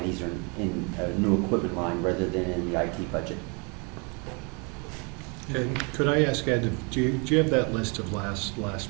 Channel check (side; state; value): left; quieter; 33.1 dB